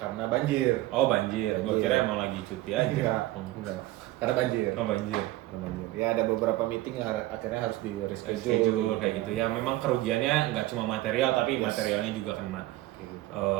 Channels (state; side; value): quieter; left; 17.1 dB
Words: banjir. Oh banjir, gue Banjir. kira emang lagi cuti aja. Iya, enggak. Karena banjir. Oh banjir. Karena banjir. Ya ada beberapa meeting yang akhirnya harus di Schedule kayak gitu ya. Memang kerugiannya nggak cuma material, tapi Yes. materialnya juga kena. Kayak gitu.